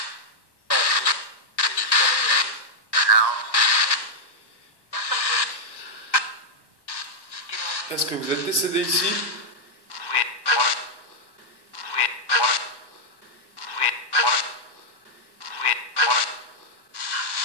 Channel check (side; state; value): right; late; 1.1 ms